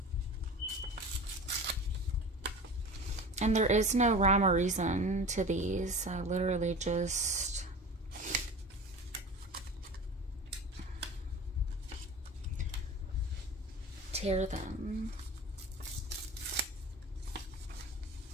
And there is no rhyme or reason to these. I literally just tear them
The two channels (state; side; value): normal; both; correlation 0.35